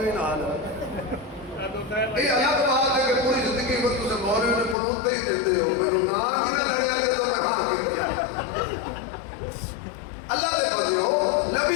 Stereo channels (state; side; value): drops out; right; at 4.8 s